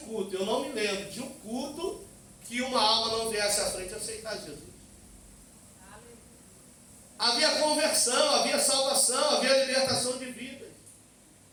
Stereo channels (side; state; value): both; identical; correlation 1.00